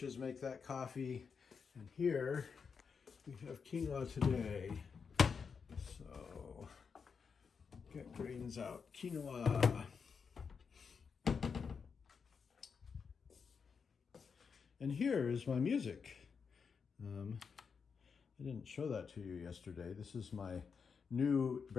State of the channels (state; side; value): quieter; right; 5.9 dB